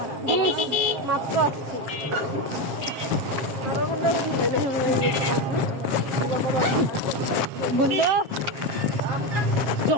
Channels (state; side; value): late; left; 7.4 ms